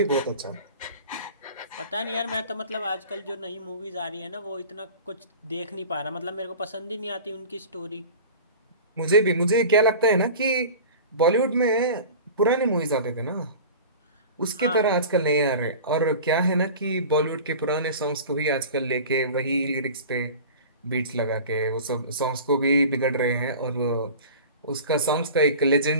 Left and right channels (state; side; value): inverted; both; correlation -0.37